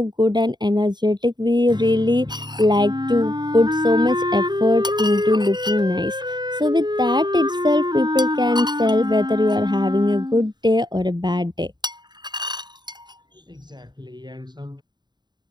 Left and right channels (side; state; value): left; late; 0.21 ms